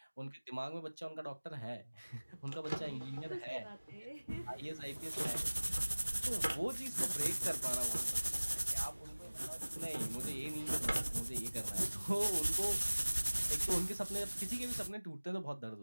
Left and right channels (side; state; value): both; inverted; correlation -1.00